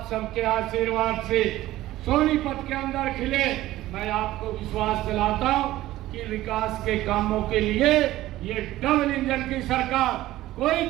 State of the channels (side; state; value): left; quieter; 15.7 dB